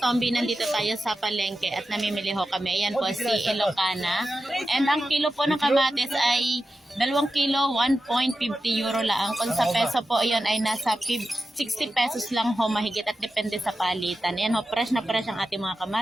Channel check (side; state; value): both; normal; correlation 0.92